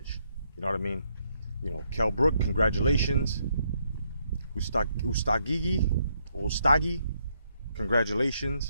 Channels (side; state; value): both; inverted; correlation -0.75